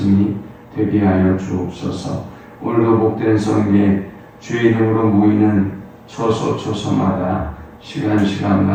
되게 하여 주옵소서. 오늘도 복된 성에 주의 이름으로 모이는 초소마다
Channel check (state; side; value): identical; both; correlation 1.00